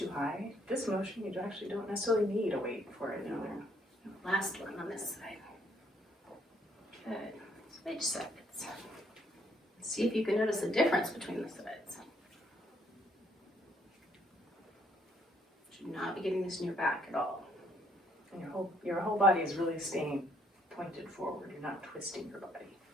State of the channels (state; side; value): normal; both; correlation 0.67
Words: high. This motion, you actually don't necessarily need a weight for it. No. Last one on this side. Good. Switch sides. See if you can notice the difference between the sides. Should not be getting this in your back at all. And your whole body is really staying pointed forward. You're not twisting your body.